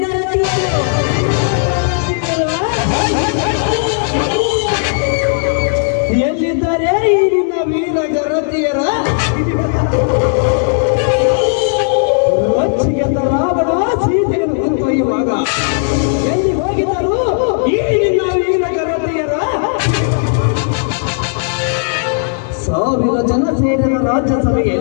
ಗರತಿ. ಎಲ್ಲಿದ್ದಾರೆ ಈ ನಿನ್ನ ವೀರ ಗರತಿಯರ? ರೊಚ್ಚಿಗೆದ್ದ ರಾವಣ ಸೀತೆಯನ್ನು ಕೊಂದೊಯ್ಯುವಾಗ ಎಲ್ಲಿ ಹೋಗಿದ್ದರು ಈ ನಿನ್ನ ವೀರ ಗರತಿಯರ? ಸಾವಿರ ಜನ ಸೇರಿದ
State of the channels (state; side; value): silent; right; digital silence